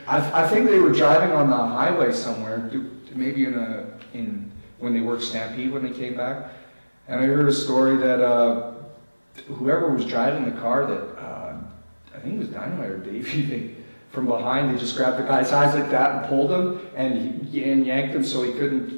I think they were driving on the highway somewhere, maybe when they worked Stampede when they came back, and I heard a story that whoever was driving the car, that I think it was Dynamite or Davey, from behind they just grabbed the guy's eyes like that and pulled him and yanked him so he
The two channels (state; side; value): inverted; both; correlation -1.00